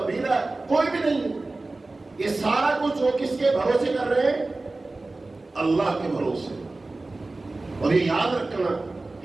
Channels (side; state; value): left; quieter; 3.2 dB